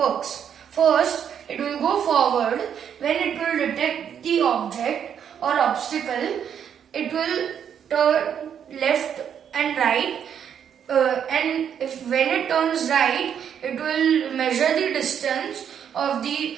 First, it will go forward. When it will detect the object or obstacle, it will turn left and right, and when it turns right, it will measure the distance of the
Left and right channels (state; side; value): quieter; left; 8.4 dB